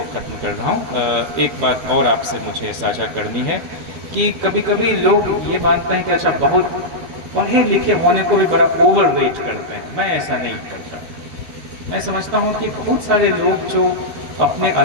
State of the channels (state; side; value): late; left; 12 ms